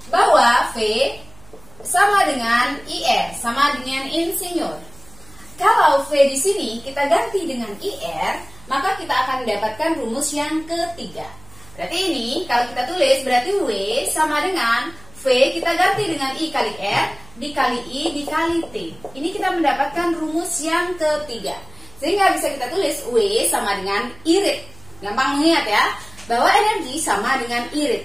bahwa V sama dengan IR, sama dengan insinyur. Kalau V di sini kita ganti dengan IR, maka kita akan mendapatkan rumus yang ketiga. Berarti ini kalau kita tulis berarti W sama dengan V kita ganti dengan I kali R dikali I dikali T. Ini kita mendapatkan rumus yang ketiga. Sehingga bisa kita tulis W sama dengan irit. Gampang mengingat ya, bahwa energi sama dengan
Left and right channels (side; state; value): right; noise; hum, 23 dB below the sound